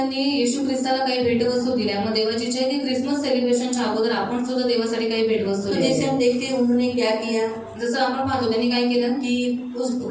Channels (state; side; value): identical; both; correlation 1.00